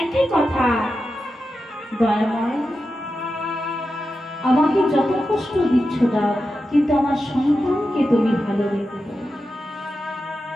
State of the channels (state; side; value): normal; both; correlation 0.90